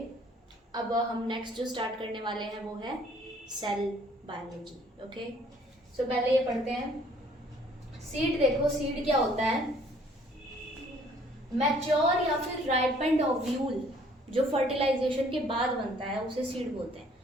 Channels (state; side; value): normal; both; correlation 0.59